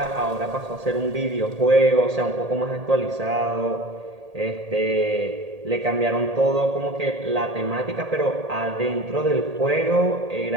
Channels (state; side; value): late; left; 1.8 ms